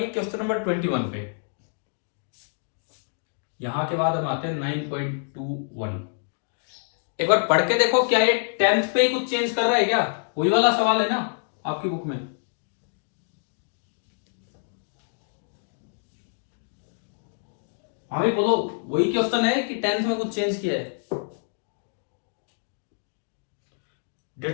क्वेश्चन नंबर 21 पे। यहां के बाद हम आते हैं 9.21। एक बार पढ़ के देखो, क्या ये 10th पे ही कुछ चेंज कर रहा है क्या? वही वाला सवाल है ना आपकी बुक में? हाँ भी बोलो, वही क्वेश्चन है कि 10th में कुछ चेंज किया है?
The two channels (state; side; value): silent; right; digital silence